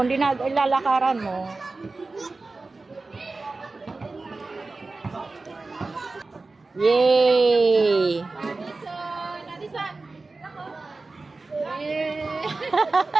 hindi na ilalakaran mo. Yay! Nadisan. Yeah.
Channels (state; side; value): quieter; left; 3.6 dB